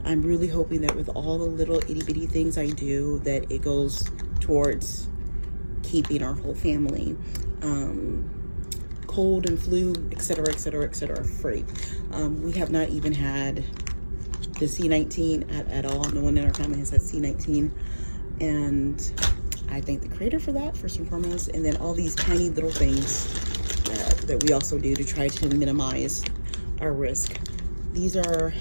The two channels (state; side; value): inverted; both; correlation -1.00